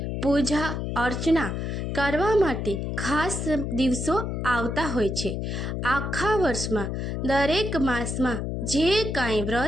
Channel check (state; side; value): noise; left; hum, 3 dB below the sound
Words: પૂજા અર્ચના કરવા માટે ખાસ દિવસો આવતા હોય છે। આખા વર્ષમાં દરેક માસમાં જે કાંઈ